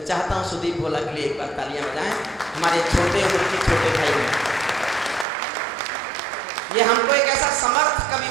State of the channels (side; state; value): left; drops out; at 5.2 s